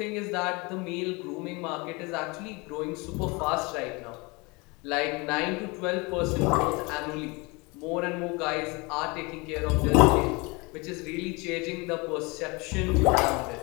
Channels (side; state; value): right; quieter; 26.9 dB